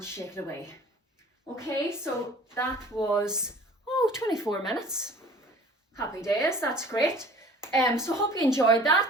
shake it away. Okay, so that was 24 minutes. Happy days, that's great. So hope you enjoyed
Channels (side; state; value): both; normal; correlation 0.47